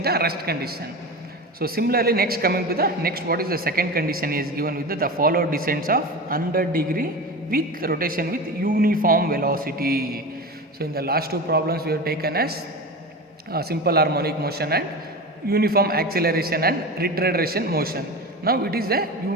the rest condition. So similarly, next coming to the next, what is the second condition is given with the follow descents of 100 degree with rotation with uniform velocity. So in the last two problems we have taken as simple harmonic motion and uniform acceleration and retardation motion. Now it is a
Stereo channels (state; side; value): normal; both; correlation 0.27